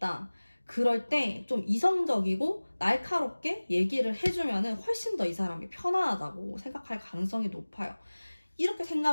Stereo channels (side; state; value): both; inverted; correlation -1.00